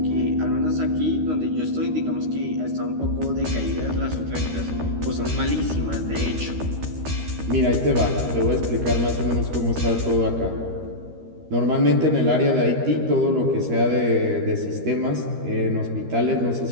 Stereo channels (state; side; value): late; left; 13 ms